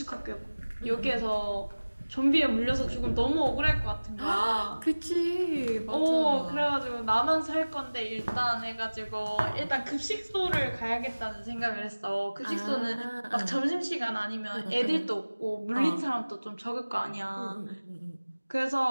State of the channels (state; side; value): inverted; both; correlation -1.00